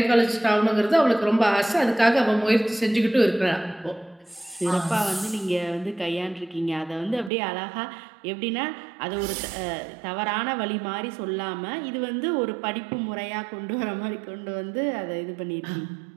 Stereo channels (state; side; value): drops out; left; at 7.3 s